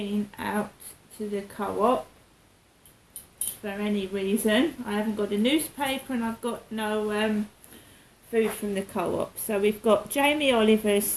out to the co-op for any reason. I haven't got a newspaper and I've got no food from the co-op. So we've got Jamie Oliver's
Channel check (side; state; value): both; identical; correlation 1.00